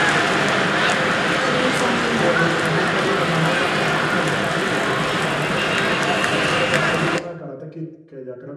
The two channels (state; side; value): identical; both; correlation 1.00